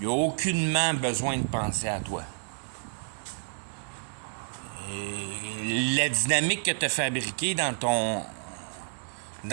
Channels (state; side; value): silent; left; digital silence